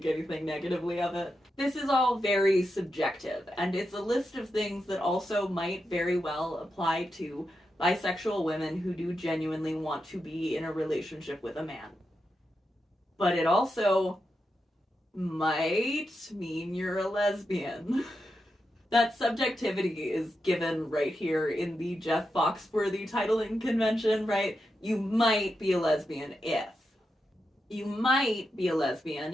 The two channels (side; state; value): both; normal; correlation 0.87